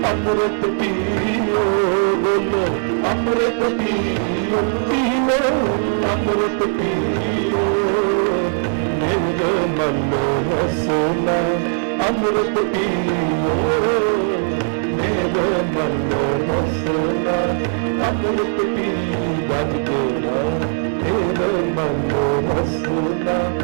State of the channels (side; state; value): left; silent; digital silence